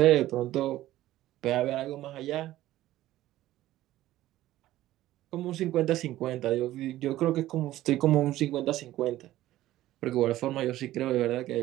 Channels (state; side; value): quieter; left; 14.9 dB